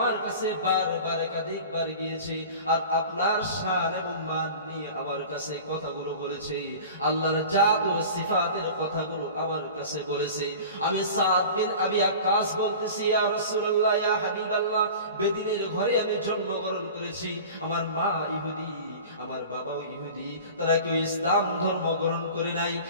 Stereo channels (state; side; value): inverted; both; correlation -0.38